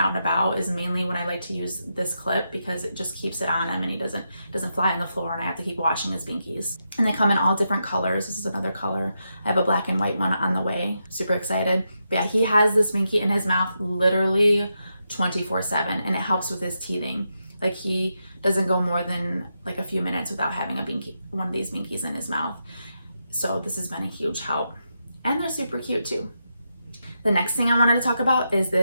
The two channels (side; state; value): both; inverted; correlation -0.85